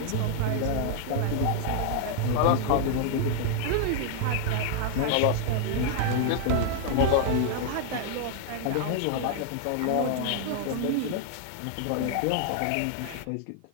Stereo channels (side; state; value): both; different; correlation 0.00